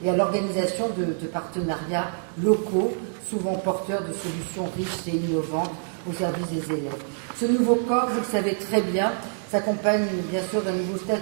et à l'organisation de partenariats locaux, souvent porteurs de solutions riches et innovantes au service des élèves. Ce nouveau corps, vous le savez très bien, s'accompagne bien sûr d'un nouveau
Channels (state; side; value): silent; left; digital silence